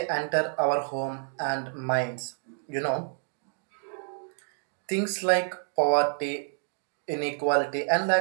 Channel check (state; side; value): silent; left; digital silence